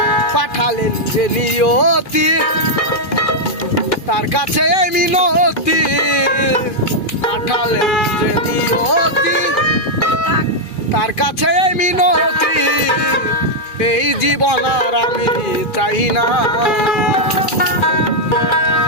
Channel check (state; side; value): late; right; 2.5 ms